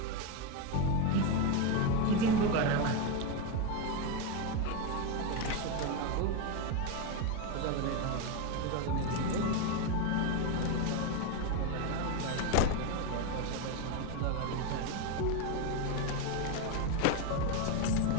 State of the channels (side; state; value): both; different; correlation 0.03